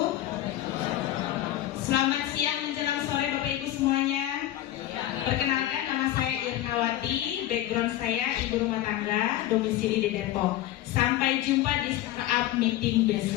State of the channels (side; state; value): right; quieter; 13.7 dB